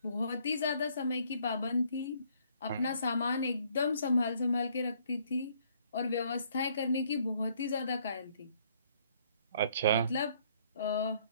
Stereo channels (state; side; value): inverted; both; correlation -0.65